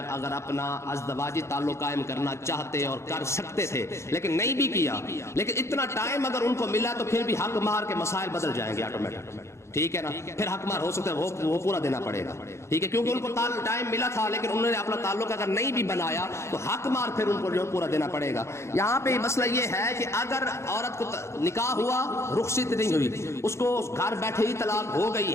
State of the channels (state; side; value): late; right; 0.13 ms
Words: اگر اپنا ازدواجی تعلق قائم کرنا چاہتے اور کر سکتے تھے لیکن نہیں بھی کیا، لیکن اتنا ٹائم اگر ان کو ملا تو پھر بھی حق مہر کے مسائل بدل جائیں گے آٹومیٹک. ٹھیک ہے نا؟ پھر حق مہر ہو سکتا ہے وہ پورا دینا پڑے گا. ٹھیک ہے، کیونکہ ان کو ٹائم ملا تھا لیکن انہوں نے اپنا تعلق اگر نہیں بھی بنایا تو حق مہر پھر ان کو جو پورا دینا پڑے گا. یہاں پہ مسئلہ یہ ہے کہ اگر عورت کو نکاح ہوا، رخصت نہیں ہوئی، اس کو گھر بیٹھے ہی طلاق ہو